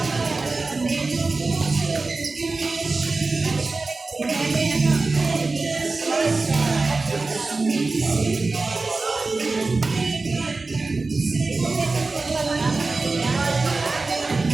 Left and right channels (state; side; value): quieter; left; 3.7 dB